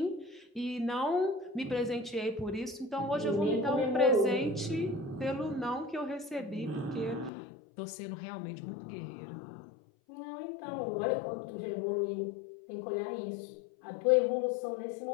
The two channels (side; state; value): right; drops out; at 7.3 s